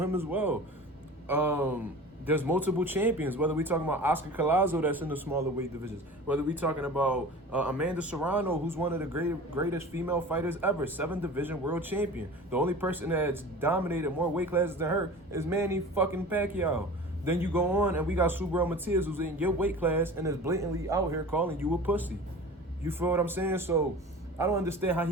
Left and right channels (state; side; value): normal; both; correlation 0.37